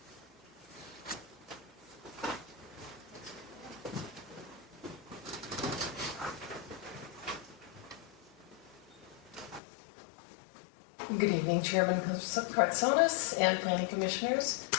Good evening, Chairman Kartsonis and Planning Commissioners.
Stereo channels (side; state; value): right; drops out; at 9.6 s